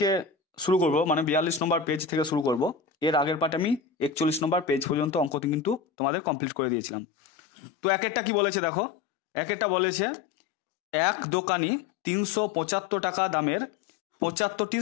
শুরু করব, মানে 42 নম্বর পেজ থেকে শুরু করব। এর আগের পাঠে আমি 41 নম্বর পেজ পর্যন্ত অঙ্ক কিন্তু তোমাদের কমপ্লিট করে দিয়েছিলাম। তো এক একটা কি বলেছে দেখো, এক একটা বলেছে এক দোকানি 375 টাকা দামের 75টি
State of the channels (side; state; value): right; drops out; at 5.8 s